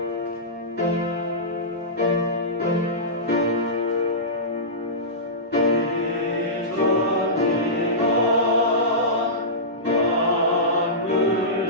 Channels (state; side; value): normal; both; correlation -0.18